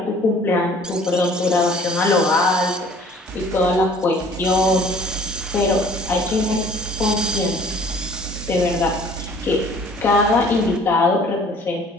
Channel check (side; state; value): both; normal; correlation 0.53